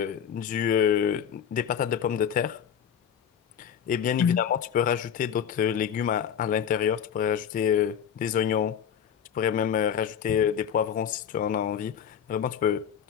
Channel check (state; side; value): quieter; right; 8.5 dB